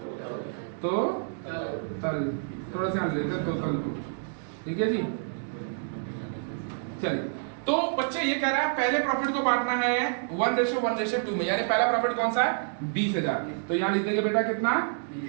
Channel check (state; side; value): silent; left; digital silence